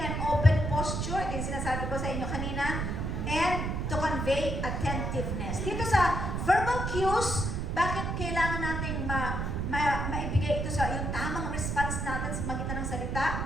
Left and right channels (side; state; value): right; noise; rumble, 2 dB below the sound